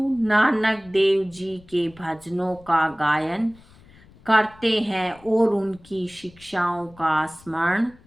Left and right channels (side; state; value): left; noise; rumble, 25 dB below the sound